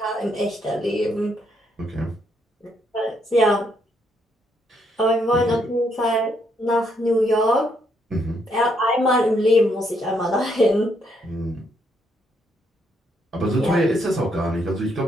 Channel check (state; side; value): normal; both; correlation 0.74